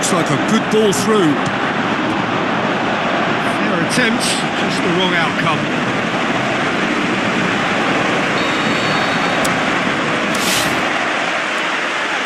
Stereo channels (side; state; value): both; identical; correlation 1.00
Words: like a good ball through. Fair attempt, just the wrong outcome.